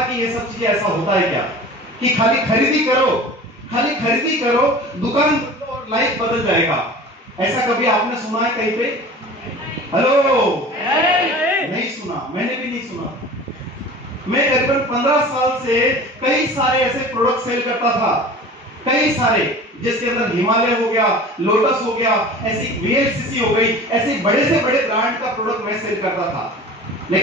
कि ये सब चीजें ऐसा होता है क्या, कि खाली खरीदी करो, दुकान और लाइफ बदल जाएगा। ऐसा कभी आपने सुना है कहीं पे? हेलो? नहीं सुना, मैंने भी नहीं सुना। मैं करीबन 15 साल से कई सारे ऐसे प्रोडक्ट सेल करता था, कई सारे, जिसके अंदर हिमालय हो गया, लोटस हो गया, ऐसी वीएलसीसी हो गई, ऐसे बड़े से बड़े ब्रांड का प्रोडक्ट मैं सेल करता था।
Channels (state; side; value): normal; both; correlation 0.39